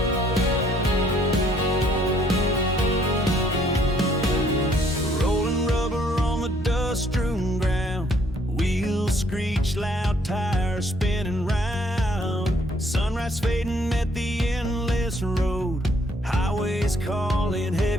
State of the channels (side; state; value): both; normal; correlation 0.65